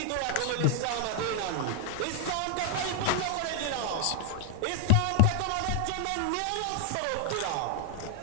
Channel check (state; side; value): different; both; correlation 0.00